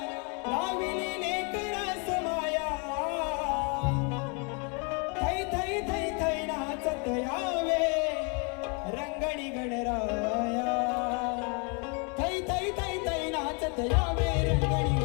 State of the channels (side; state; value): right; quieter; 34.0 dB